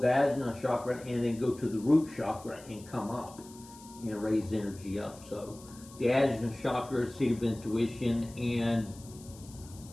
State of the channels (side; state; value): left; noise; hiss, 21 dB below the sound